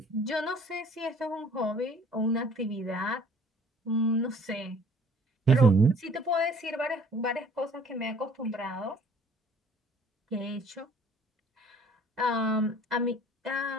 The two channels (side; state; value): both; normal; correlation 0.54